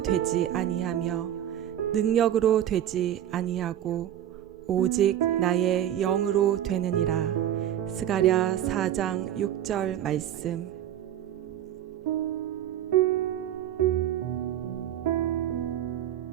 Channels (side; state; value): left; quieter; 11.3 dB